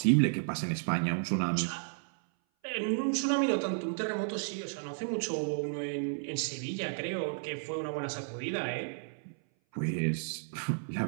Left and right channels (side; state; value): left; silent; 56 dB below the other